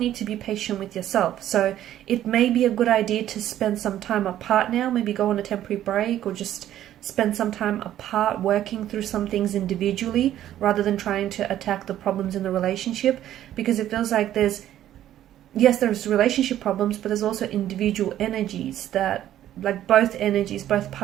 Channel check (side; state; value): left; quieter; 12.1 dB